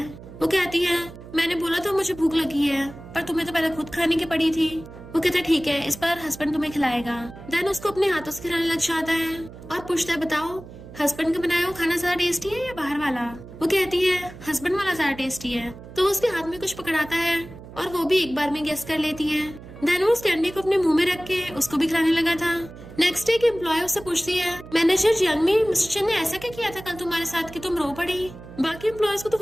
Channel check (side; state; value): right; noise; hum, 16 dB below the sound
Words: वो कहती है मैंने बोला था मुझे भूख लगी है, पर तुम्हें तो पहले खुद खाने की पड़ी थी। वो कहता है ठीक है इस बार हस्बैंड तुम्हें खिलाएगा। देन उसको अपने हाथों से खिलाने लग जाता है और पूछता है बताओ हस्बैंड का बनाया हुआ खाना ज्यादा टेस्टी है या बाहर वाला। वो कहती है हस्बैंड वाला ज्यादा टेस्टी है। तो वो उसके हाथ में कुछ पकड़ाता है और वो भी एक बार में गेस कर लेती है। देन वो उस कैंडी को अपने मुंह में रख के उसको भी खिलाने लगा था। नेक्स्ट डे एक एम्प्लॉय उससे पूछती है मैनेजर जियांगमी मिस्टर चैन ने ऐसा क्या किया था कल तुम्हारे साथ कि तुम रो पड़ी। बाकी एम्प्लॉयज को तो